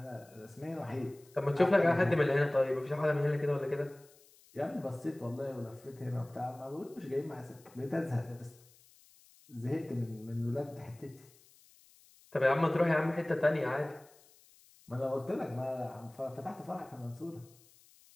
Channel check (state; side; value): noise; left; hiss, 27 dB below the sound